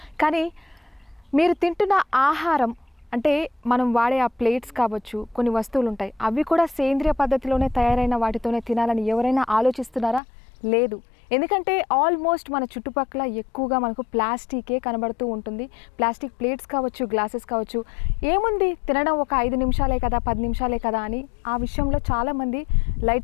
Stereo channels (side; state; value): right; drops out; at 10.2 s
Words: కానీ మీరు తింటున్న ఆహారం అంటే మనం వాడే ఆ ప్లేట్స్ కావచ్చు, కొన్ని వస్తువులు ఉంటాయి, అవి కూడా సేంద్రియ పద్ధతిలోనే తయారైన వాటితోనే తినాలని ఎవరైనా ఆలోచిస్తున్నారా? లేదు. ఎందుకంటే ఆల్మోస్ట్ మన చుట్టుపక్కల ఎక్కువగా మనకు ప్లాస్టికే కనబడుతూ ఉంటుంది. ప్లాస్టిక్ ప్లేట్స్ కావచ్చు, గ్లాసెస్ కావచ్చు, ఏముంది తినడం ఒక 5 నిమిషాలే కదా, 10 నిమిషాలే కదా అని ఆ విషయంలో చాలామంది